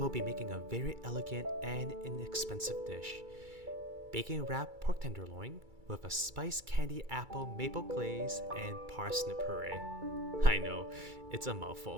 be making a very elegant and inexpensive dish, bacon wrapped pork tenderloin with a spiced candy apple maple glaze and parsnip puree. I know, it's a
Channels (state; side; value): late; left; 2.3 ms